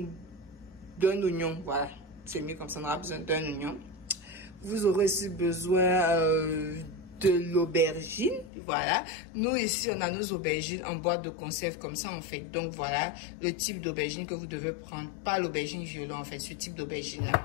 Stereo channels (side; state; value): right; drops out; at 8.5 s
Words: oignon, voilà, c'est mieux comme ça, on aura besoin d'un oignon. Vous aurez aussi besoin de l'aubergine, voilà. Nous ici, on a nos aubergines en boîte de conserve comme ça en fait. Donc voilà, le type d'aubergine que vous devez prendre, pas l'aubergine violet en fait, ce type d'aubergine là.